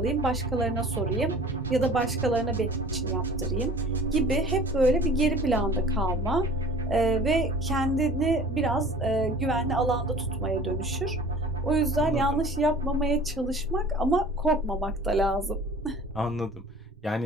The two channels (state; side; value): normal; both; correlation 0.45